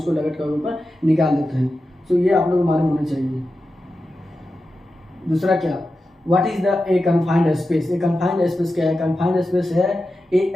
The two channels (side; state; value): both; normal; correlation 0.91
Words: लग आउट के ऊपर निकाल देते हैं। सो ये आप लोग को मालूम होना चाहिए। दूसरा क्या, what is the a confined space? A confined space क्या है? कन्फाइंड स्पेस है